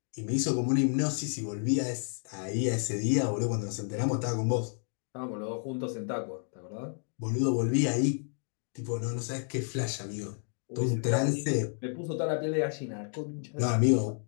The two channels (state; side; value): silent; right; 57 dB below the other